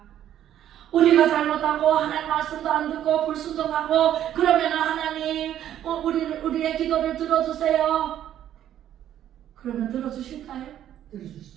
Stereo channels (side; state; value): left; quieter; 11.2 dB